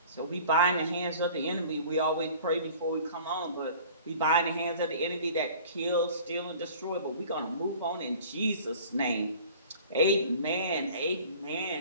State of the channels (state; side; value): inverted; both; correlation -0.46